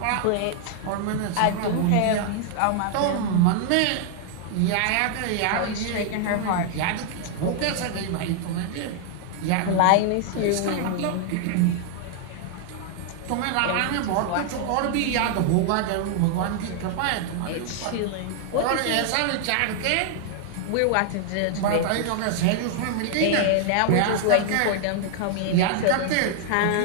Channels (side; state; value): both; different; correlation 0.00